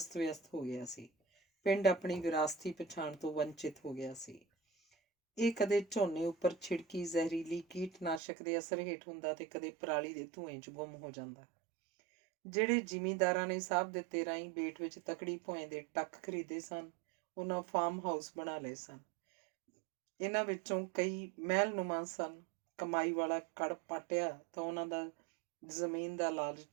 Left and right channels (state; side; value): drops out; left; at 8.2 s